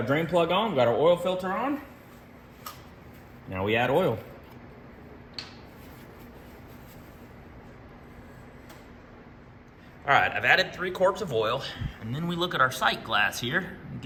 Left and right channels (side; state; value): both; identical; correlation 1.00